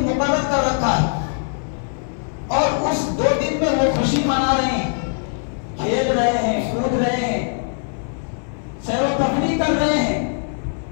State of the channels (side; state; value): right; silent; 60 dB below the other